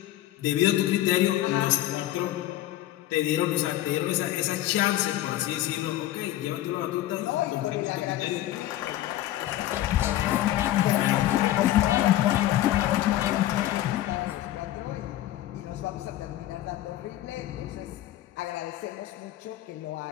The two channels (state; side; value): quieter; right; 14.1 dB